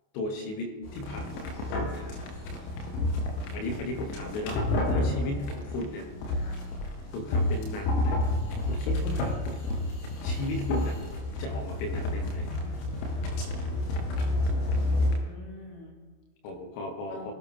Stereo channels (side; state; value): right; late; 28 ms